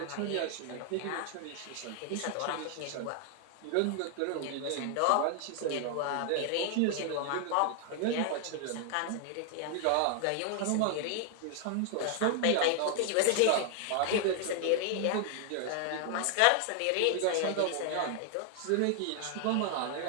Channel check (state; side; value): different; both; correlation 0.00